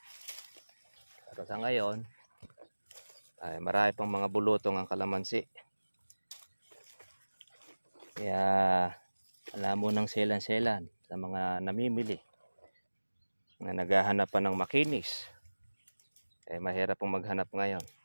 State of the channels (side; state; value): both; inverted; correlation -1.00